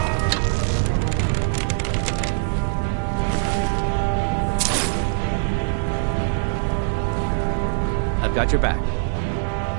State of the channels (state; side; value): silent; left; 63 dB below the other